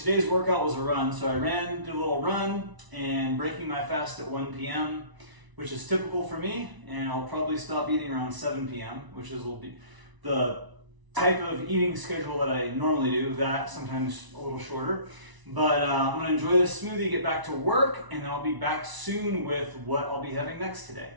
workout was a run. So I did a little run and breaking my fast at 1 p.m., which is typical for me. And I'll probably stop eating around 7 p.m., which will be the type of eating schedule that I normally do, that sometimes a little shorter. But I'm gonna enjoy this smoothie, get back to work, and then I'll be back soon with what I'll be having next today.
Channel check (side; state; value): left; late; 1.0 ms